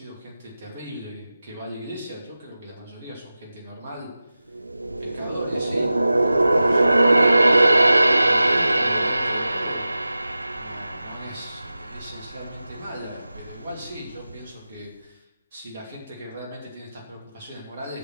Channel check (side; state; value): both; inverted; correlation -0.94